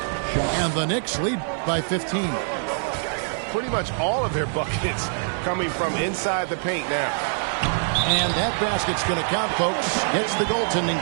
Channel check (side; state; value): left; silent; digital silence